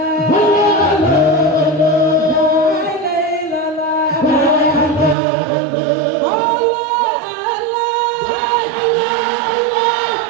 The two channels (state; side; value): drops out; left; at 5.2 s